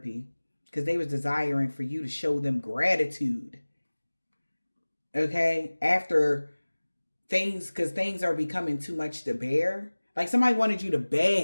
because they was desiring for you to show them gratitude. Okay? After because things are becoming too much to bear. Like somebody wanted you to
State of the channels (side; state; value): both; inverted; correlation -1.00